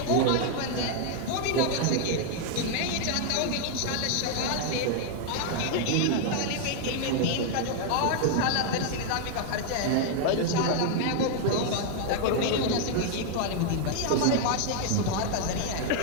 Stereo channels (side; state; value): both; different; correlation 0.00